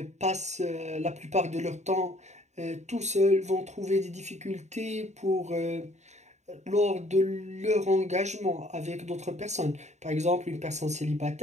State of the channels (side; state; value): left; late; 0.33 ms